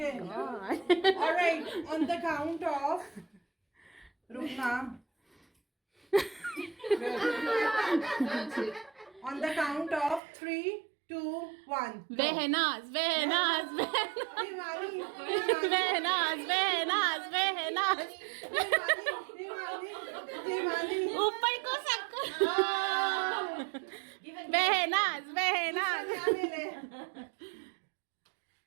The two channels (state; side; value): drops out; left; at 10.2 s